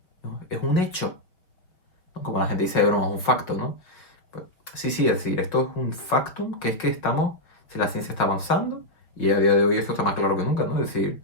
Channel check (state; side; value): late; right; 5.2 ms